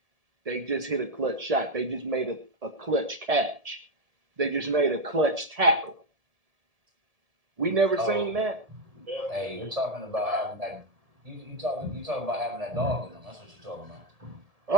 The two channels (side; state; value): left; late; 1.7 ms